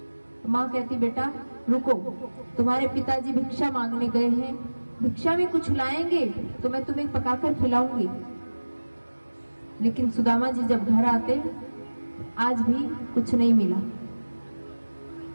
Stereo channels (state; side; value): inverted; both; correlation -1.00